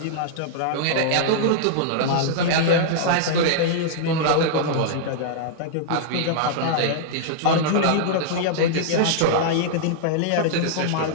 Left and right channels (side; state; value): both; different; correlation -0.02